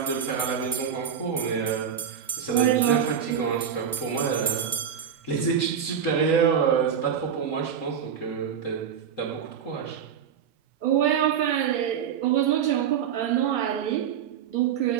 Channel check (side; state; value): left; quieter; 8.0 dB